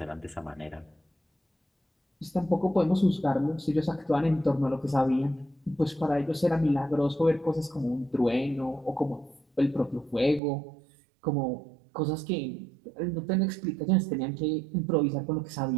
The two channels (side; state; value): left; drops out; at 10.4 s